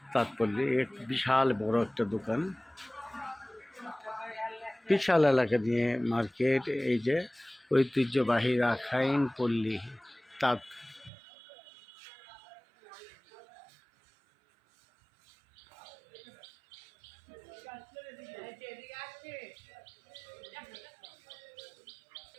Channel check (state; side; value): drops out; left; at 11.1 s